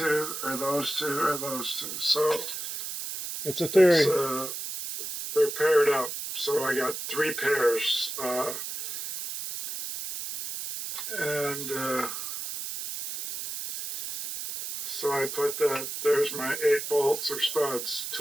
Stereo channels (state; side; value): noise; right; hiss, 6 dB below the sound